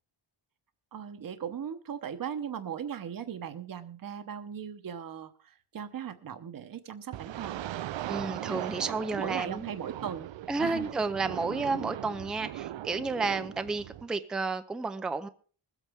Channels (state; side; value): quieter; left; 5.0 dB